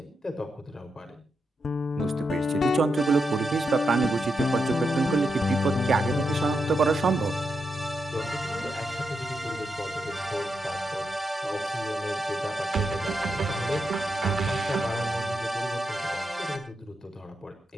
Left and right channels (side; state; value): both; normal; correlation 0.85